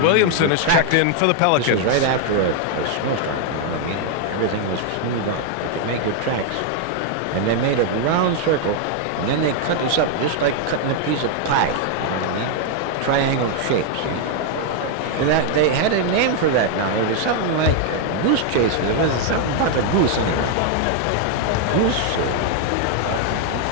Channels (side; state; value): both; different; correlation 0.00